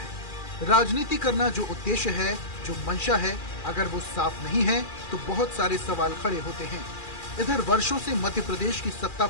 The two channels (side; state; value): right; late; 2.4 ms